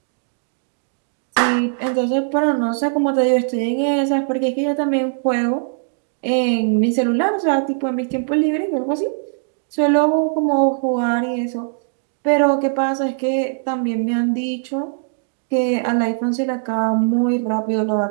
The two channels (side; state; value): left; silent; digital silence